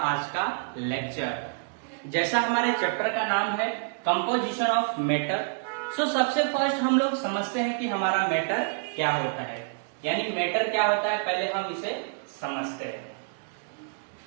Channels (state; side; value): silent; left; digital silence